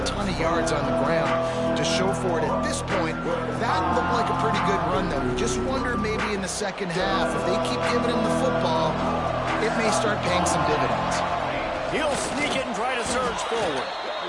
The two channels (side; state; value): both; identical; correlation 1.00